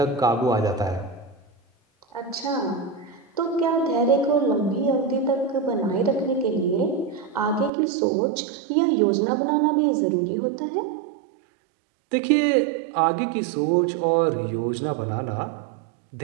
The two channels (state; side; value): drops out; left; at 7.7 s